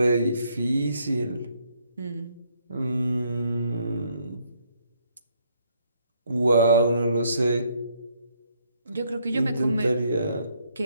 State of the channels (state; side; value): inverted; both; correlation -0.71